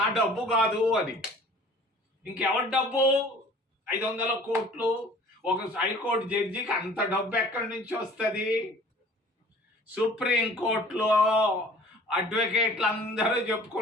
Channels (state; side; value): normal; both; correlation 0.49